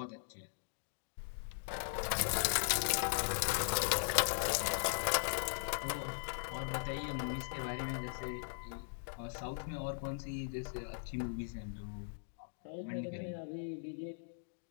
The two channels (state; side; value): silent; right; digital silence